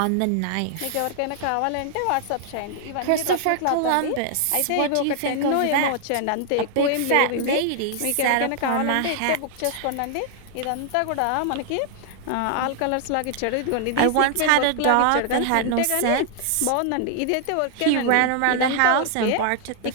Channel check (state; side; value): different; both; correlation 0.00